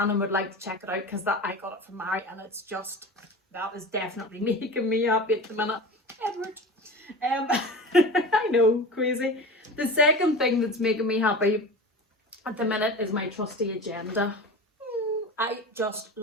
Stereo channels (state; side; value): normal; both; correlation 0.32